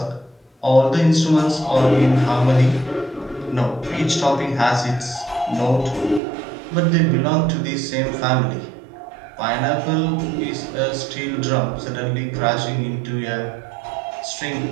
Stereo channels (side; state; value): left; drops out; at 6.2 s